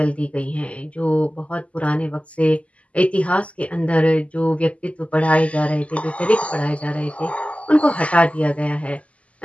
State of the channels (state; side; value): late; right; 0.065 ms